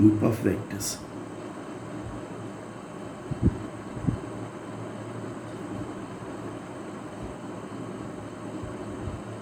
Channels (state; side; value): identical; both; correlation 1.00